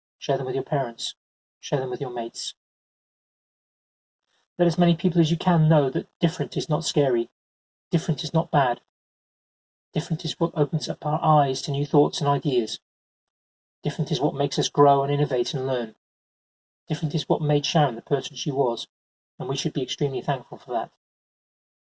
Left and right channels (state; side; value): identical; both; correlation 1.00